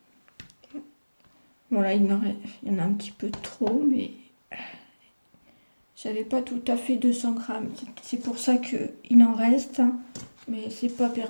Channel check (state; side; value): inverted; both; correlation -1.00